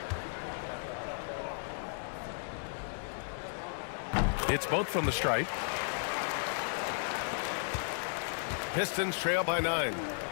It's both from the stripe. Pistons trail by 9.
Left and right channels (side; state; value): right; silent; 55 dB below the other